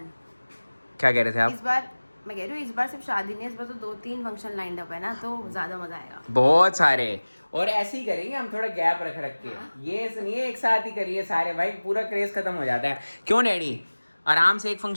क्या कह रहे थे आप? इस बार मैं कह रही हूँ, इस बार सिर्फ शादी नहीं है, इस बार तो 2-3 फंक्शन लाइंड अप है ना, तो ज़्यादा मज़ा आएगा। बहुत सारे। और ऐसे ही करेंगे हम, थोड़ा गैप रख के। ये सुनिए एक साथ ही करिए सारे भाई, पूरा क्रेज खत्म हो जाता है। क्यों डैडी? आराम से एक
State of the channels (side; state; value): both; inverted; correlation -1.00